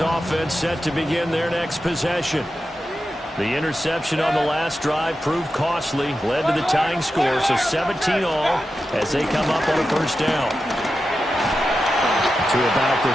set to begin their next possession. The interception on the last drive proved costly, led to the tying score, so 17 all as they come up on a first down. To about the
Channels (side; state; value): both; normal; correlation 0.91